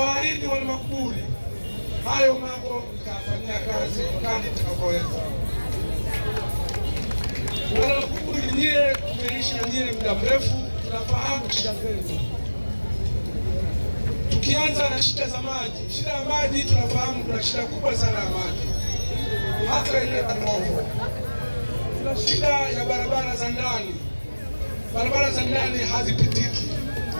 wana Makuburi hayo mambo nitafanyia kazi kadri nitakavyoweza. Wana Makuburi, nyie tumeishi na nyie muda mrefu, tunafahamu shida zenu. Tukianza na shida za maji, shida ya maji tunafahamu kuna shida kubwa sana ya maji, hata ile Kanovo. Kuna shida ya barabara za ndani, barabara za ndani hazipitiki,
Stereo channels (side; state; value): both; inverted; correlation -1.00